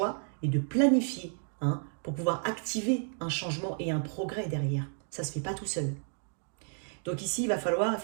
et de planifier, hein, pour pouvoir activer un changement et un progrès derrière. Ça ne se fait pas tout seul. Donc ici, il va falloir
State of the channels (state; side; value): silent; left; 57 dB below the other